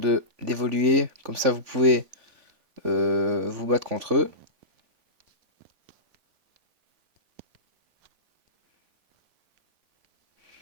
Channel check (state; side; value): late; left; 3.5 ms